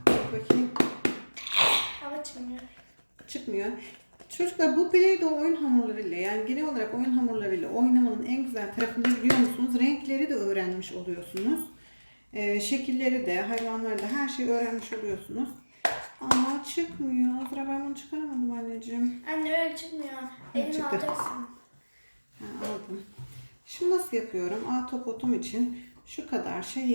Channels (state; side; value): inverted; both; correlation -1.00